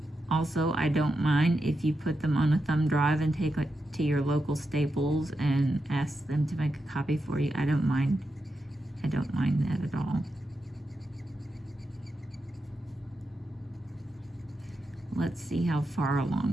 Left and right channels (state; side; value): normal; both; correlation 0.87